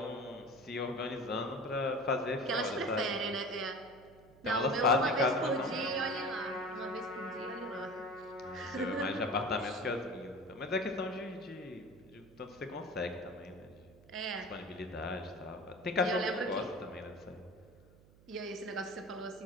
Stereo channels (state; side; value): noise; right; hum, 25 dB below the sound